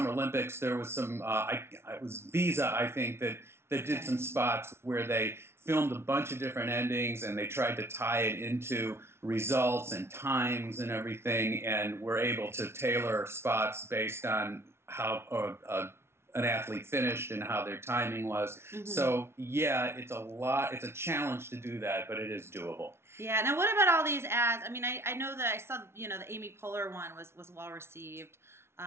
Olympics, there was some, it was Visa, I think, that did some spots where they filmed a bunch of different endings and they tried to tie it into results and times and everything, and were able to tailor spots based on how an athlete finished and how their timing was. So, yeah, it's a challenge to do that, but it is doable. Yeah. Now, what about all these ads? I mean, I know that I saw, the Amy Poehler one was well received.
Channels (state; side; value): late; left; 0.12 ms